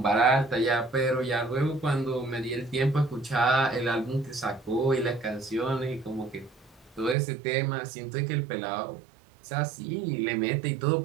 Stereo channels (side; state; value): left; drops out; at 7.2 s